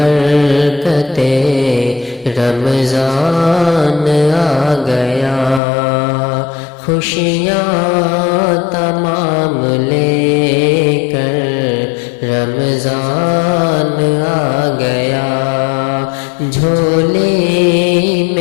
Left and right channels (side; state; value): right; drops out; at 5.6 s